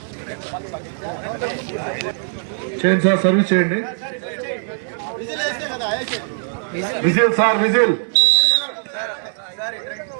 చేయండి సార్, సర్వీస్ చేయండి. Whistle sir, whistle.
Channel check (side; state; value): left; silent; 59 dB below the other